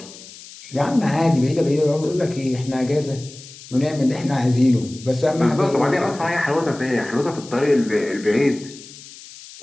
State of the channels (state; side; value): noise; left; hiss, 18 dB below the sound